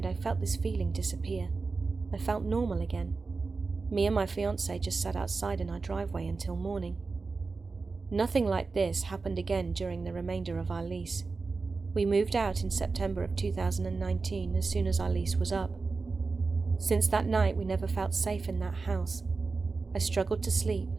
I felt this feeling disappear. I felt normal again. Me and my fiancé just sat outside in our driveway until morning. Nothing like this happened again during the remainder of our lease. We moved out in September of 2019 as soon as our lease was up. Since that night, we never felt safe in that house. I struggled to sleep,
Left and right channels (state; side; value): quieter; left; 4.2 dB